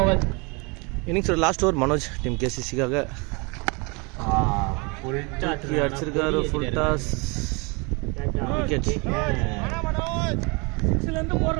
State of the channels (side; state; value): left; quieter; 29.9 dB